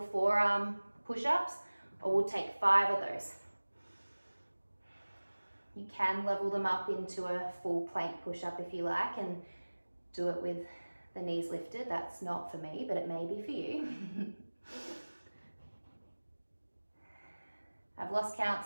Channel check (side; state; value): both; inverted; correlation -1.00